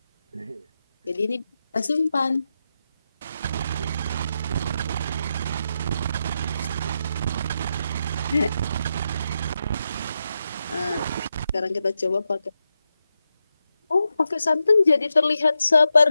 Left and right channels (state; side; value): inverted; both; correlation -0.86